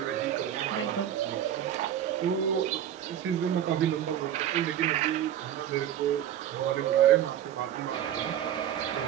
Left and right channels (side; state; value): left; quieter; 10.7 dB